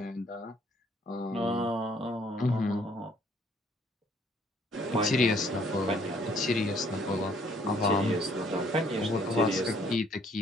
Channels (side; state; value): both; normal; correlation 0.63